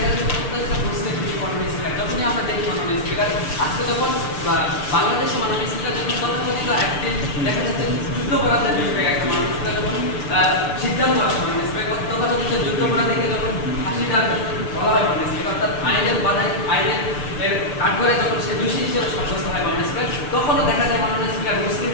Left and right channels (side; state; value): right; late; 6.8 ms